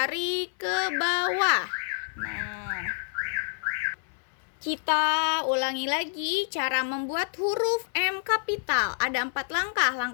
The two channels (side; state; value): right; silent; 56 dB below the other